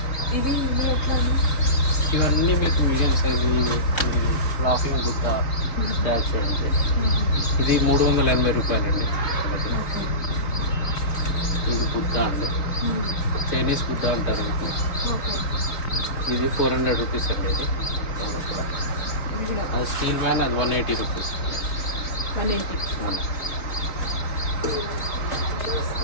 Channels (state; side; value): late; right; 3.9 ms